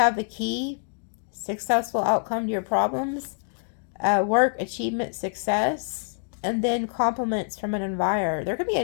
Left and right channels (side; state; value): right; silent; digital silence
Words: the key. Successful outcome to your problems. Work, achievement, success. And then compliments from an admirer. There could be